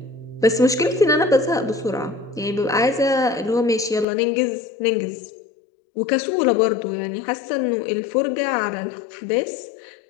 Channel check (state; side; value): drops out; right; at 4.0 s